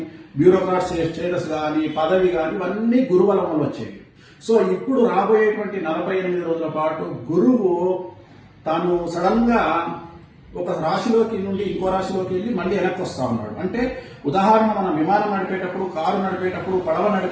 బ్యూరోక్రాట్ స్టేటస్ కానీ, పదవి కానీ, ఇవన్నీ గురుబలం వల్ల వచ్చేవి. సో ఇప్పుడు రాబోయేటువంటి 48 రోజుల పాటు గురువు తాను సడన్ గా ఒక రాశిలోకి నుండి ఇంకో రాశిలోకి వెళ్ళి మళ్ళీ వెనక్కి వస్తా ఉన్నాడు. అంటే ఉదాహరణ, మనం విమానం నడిపేటప్పుడు, కారు నడిపేటప్పుడు, పడవ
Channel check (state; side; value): identical; both; correlation 1.00